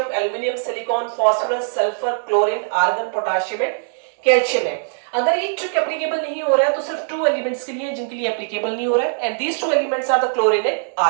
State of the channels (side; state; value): left; silent; digital silence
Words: aluminium, silicon, phosphorus, sulphur, chlorine, argon, potassium and calcium है. अगर ये ट्रिक एप्लीकेबल नहीं हो रहा है तो सिर्फ 2 एलिमेंट्स के लिए जिनके लिए एप्लीकेबल नहीं हो रहा है, and these 2 elements are the chlorine and